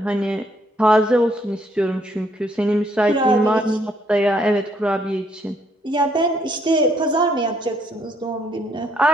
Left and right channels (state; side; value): normal; both; correlation 0.69